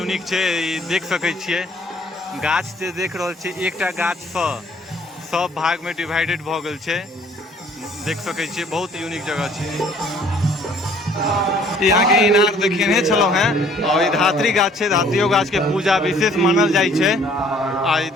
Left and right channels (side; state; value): both; normal; correlation 0.58